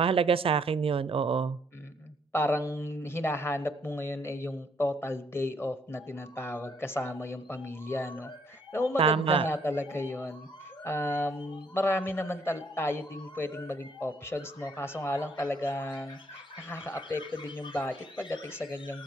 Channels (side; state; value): both; normal; correlation 0.67